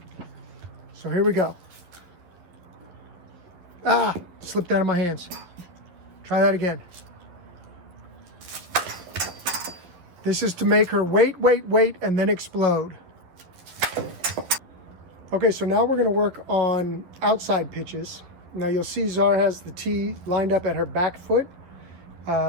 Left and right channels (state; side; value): late; left; 11 ms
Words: So here we go. Ah, slipped out of my hands. Try that again. This is to make her wait, and then explode. Okay, so now we're gonna work on outside pitches. Now you'll see Czar has the tee lined up at her back foot,